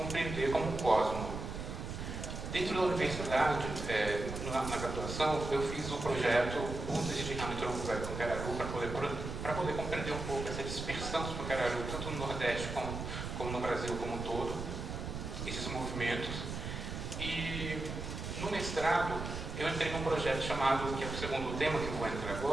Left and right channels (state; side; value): noise; right; rumble, 6 dB below the sound